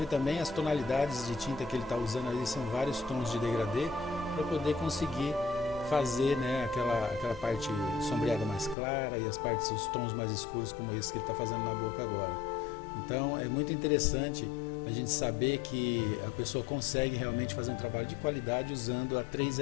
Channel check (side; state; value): right; drops out; at 8.8 s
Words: também as tonalidades de tinta que ele está usando ali, são vários tons de degradê para poder conseguir fazer, né, aquela parte sombreada mais clara e as partes, os tons mais escuros como esse que ele está fazendo na boca agora. Então é muito interessante a gente saber que a pessoa consegue realmente fazer um trabalho de qualidade usando a